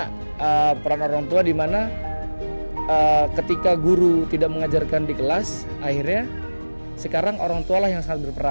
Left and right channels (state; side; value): inverted; both; correlation -1.00